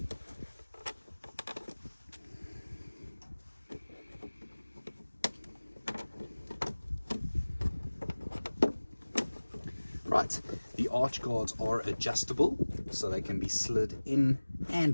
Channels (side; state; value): both; inverted; correlation -1.00